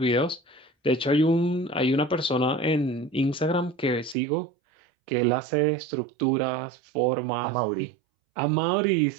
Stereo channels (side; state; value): left; drops out; at 4.2 s